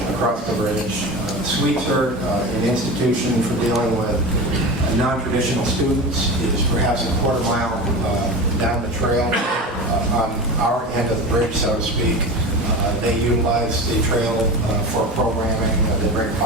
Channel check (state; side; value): normal; both; correlation 0.28